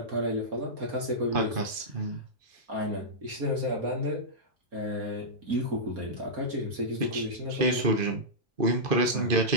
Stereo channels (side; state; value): left; late; 2.5 ms